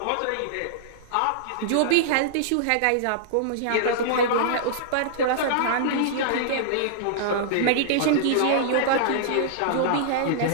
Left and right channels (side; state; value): both; different; correlation -0.02